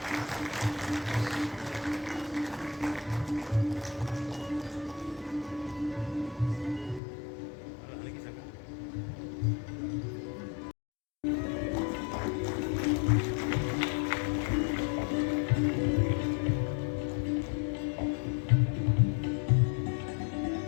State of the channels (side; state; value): right; drops out; at 7.0 s